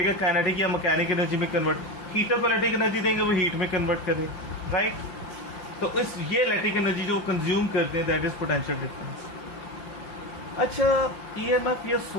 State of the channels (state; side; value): late; right; 5.8 ms